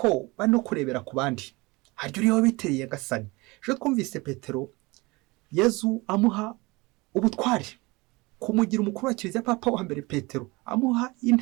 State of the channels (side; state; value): left; quieter; 23.9 dB